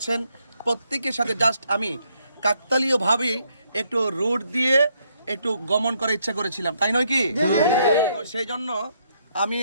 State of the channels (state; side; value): inverted; both; correlation -0.73